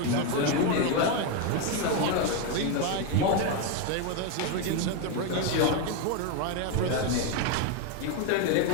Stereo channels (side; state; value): both; different; correlation 0.02